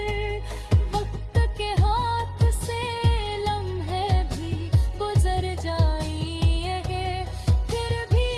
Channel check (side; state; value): both; identical; correlation 1.00